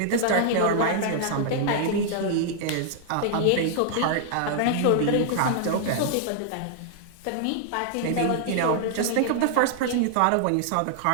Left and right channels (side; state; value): both; different; correlation -0.01